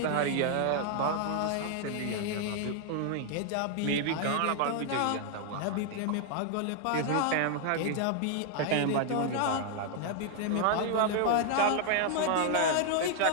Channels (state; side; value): different; both; correlation 0.00